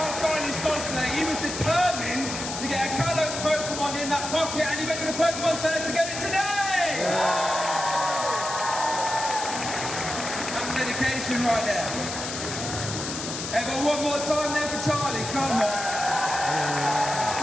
Charlie's cosplay. He was determined to get a Kalos Pokemon in that pocket, and he went to the Pokemon Center to get it today! That's dedication right there. Ever one more time there for Charlie, come on.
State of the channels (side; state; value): left; noise; hiss, 6 dB below the sound